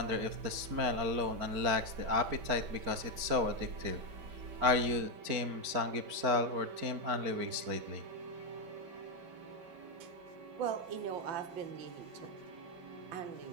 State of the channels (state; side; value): late; left; 4.5 ms